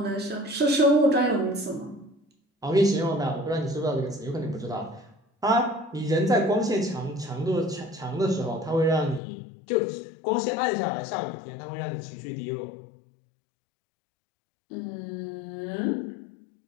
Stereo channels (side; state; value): right; drops out; at 9.2 s